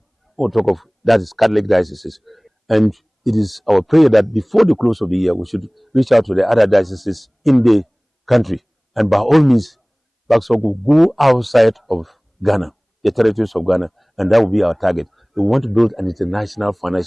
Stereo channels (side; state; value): both; identical; correlation 1.00